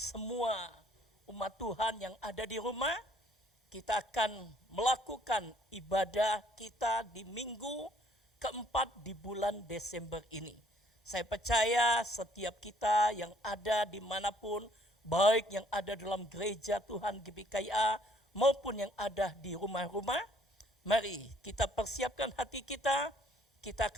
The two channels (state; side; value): normal; both; correlation 0.62